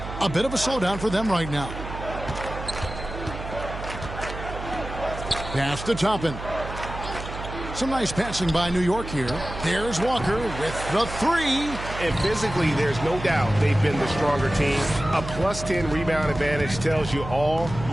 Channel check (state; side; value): noise; right; hum, 9 dB below the sound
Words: A bit of a slowdown for them right now. Pass to Toppin. Some nice passing by New York here. There's Walker with the 3. And physically, there's no doubt they've been the stronger team. A plus 10 rebound advantage tells you all